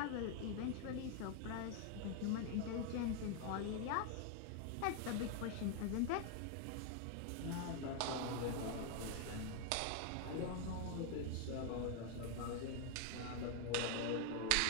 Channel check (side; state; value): both; different; correlation 0.00